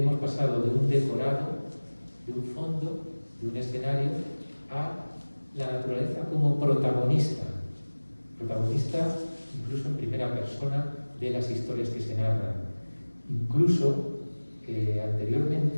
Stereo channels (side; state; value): both; inverted; correlation -1.00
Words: pasado de un decorado, de un fondo, de un escenario, a la naturaleza como protagonista incluso en primera persona de las historias que se narran. Incluso